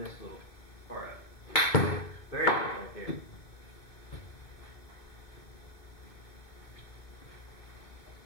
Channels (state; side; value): late; right; 2.4 ms